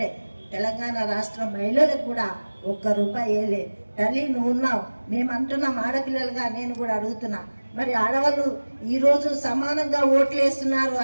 తెలంగాణ రాష్ట్ర మహిళలకు కూడా ₹1 వేయలే. తల్లి నువ్వు ఉన్నావు, మేము అంటున్నాం ఆడపిల్లలుగా, నేను కూడా అడుగుతున్నా. మరి ఆడవాళ్ళు ఈరోజు సమానంగా ఓట్లు వేస్తున్నారు,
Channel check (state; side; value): inverted; both; correlation -1.00